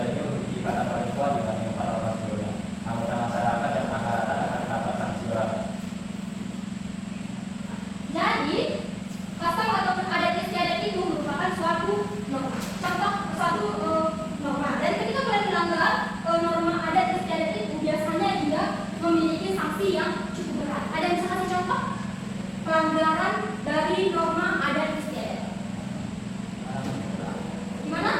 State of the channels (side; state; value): both; identical; correlation 1.00